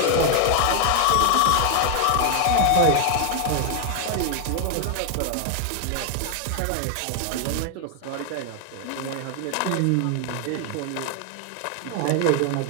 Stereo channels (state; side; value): different; both; correlation 0.00